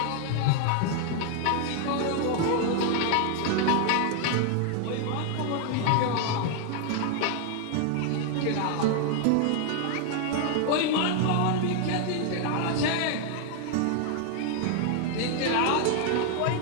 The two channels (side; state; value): both; different; correlation 0.00